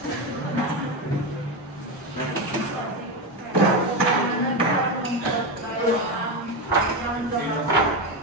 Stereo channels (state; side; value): normal; both; correlation 0.14